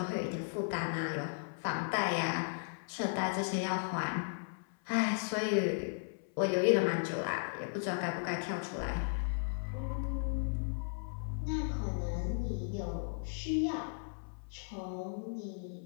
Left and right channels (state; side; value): silent; right; 54 dB below the other